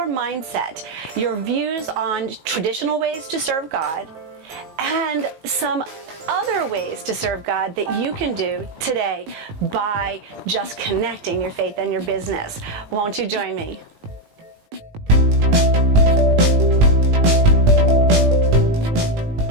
mindset, your views on traditional ways to serve God, and some other ways to serve God that you can do today by just connecting your faith and your business. Won't you join me?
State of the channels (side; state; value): left; late; 19 ms